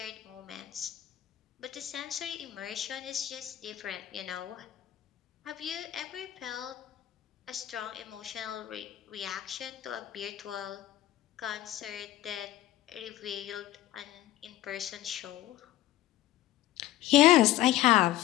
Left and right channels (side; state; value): right; quieter; 14.4 dB